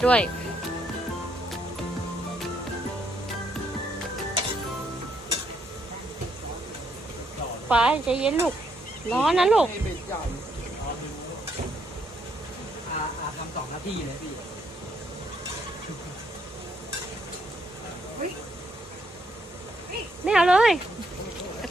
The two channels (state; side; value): normal; both; correlation 0.74